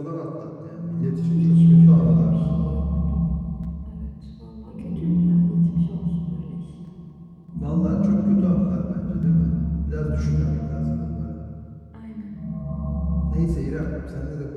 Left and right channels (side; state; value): both; identical; correlation 1.00